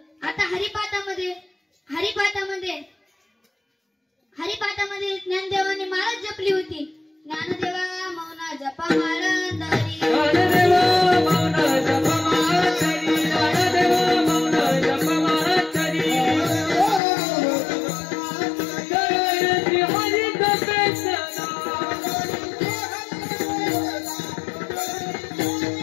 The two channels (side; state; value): right; drops out; at 17.0 s